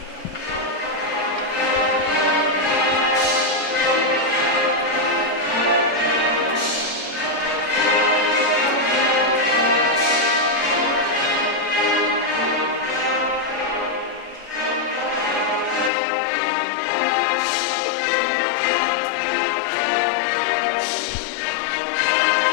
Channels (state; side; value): drops out; right; at 15.9 s